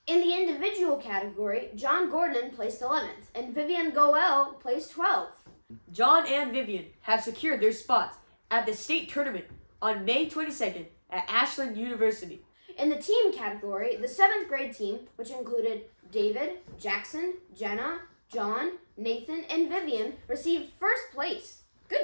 In the individual category, John Gordon placed 11th and Vivian Goel placed 12th. John and Vivian have secured their spots at the state tournament on May 22nd at Ashland University. In the team category, the 7th grade team, which included David, Jackson, Jenna, John, Nathan, and Vivian, received 1st place.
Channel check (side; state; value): both; inverted; correlation -1.00